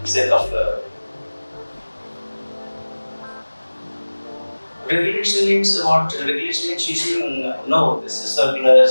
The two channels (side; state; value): both; inverted; correlation -1.00